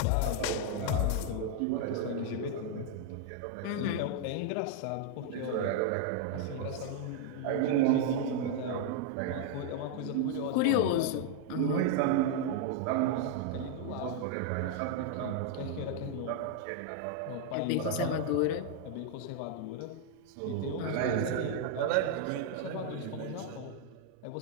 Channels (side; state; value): both; different; correlation 0.00